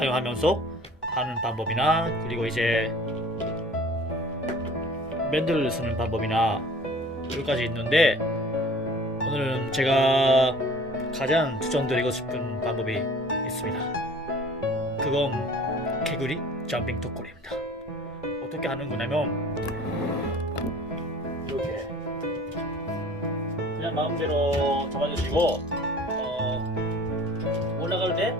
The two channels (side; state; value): both; normal; correlation 0.47